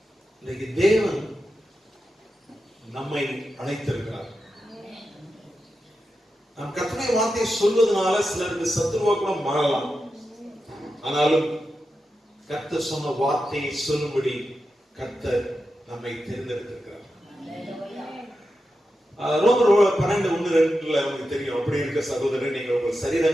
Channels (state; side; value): normal; both; correlation 0.89